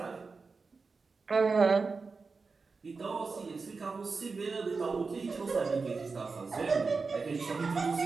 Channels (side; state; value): left; quieter; 4.4 dB